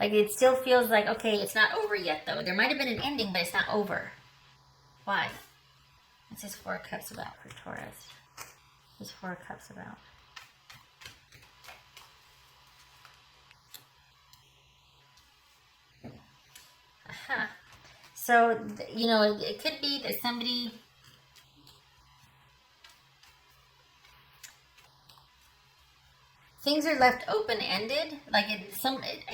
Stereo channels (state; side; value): identical; both; correlation 1.00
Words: Like it still feels like, okay, it's not over yet though. There might have been an ending, but it's not over. Why? What's this 4 of Cups about for Taurus? What's 4 of Cups about? Aha. So, you know, it could be that somebody... Things are left open-ended, like it